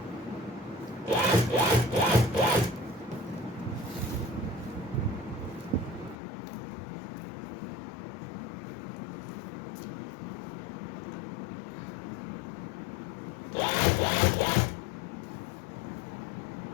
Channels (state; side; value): drops out; right; at 6.2 s